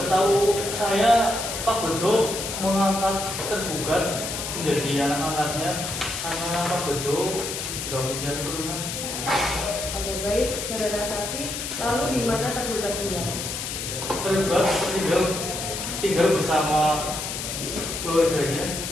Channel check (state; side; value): noise; left; hiss, 5 dB below the sound